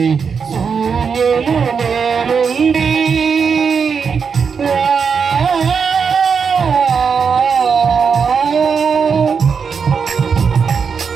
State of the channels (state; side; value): quieter; left; 6.0 dB